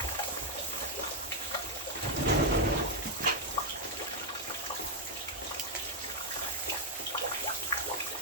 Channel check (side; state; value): both; normal; correlation 0.00